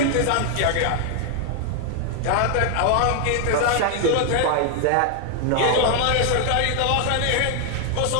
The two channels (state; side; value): different; both; correlation 0.00